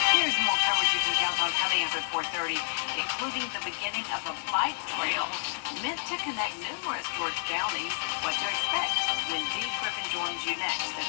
more coverage you can count on coming up at 4:30, including the beginning of a bike trail meant to connect numerous George counties. What to expect when Dee Griffin joins you next at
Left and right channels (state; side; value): silent; right; digital silence